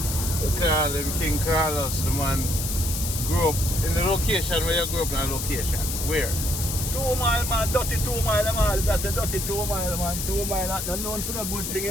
him King Carlos, the man grew up in the location where you grew up in a location. Where? 2 mile, man, dirty 2 mile, man. That's a dirty 2 mile, man. 2 mile, that's not known for a good thing,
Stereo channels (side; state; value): left; noise; hiss, 4 dB below the sound